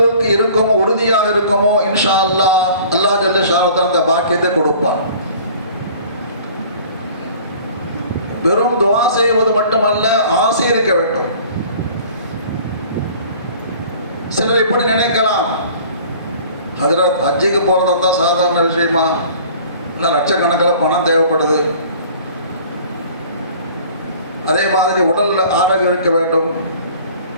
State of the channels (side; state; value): both; inverted; correlation -0.48